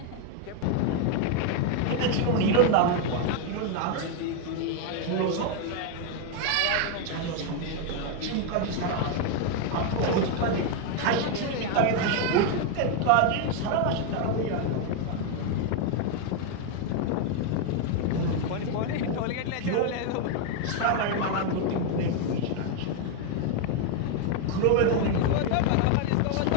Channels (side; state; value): both; different; correlation 0.01